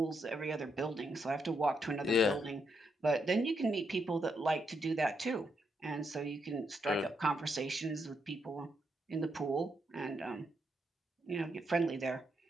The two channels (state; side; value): normal; both; correlation 0.79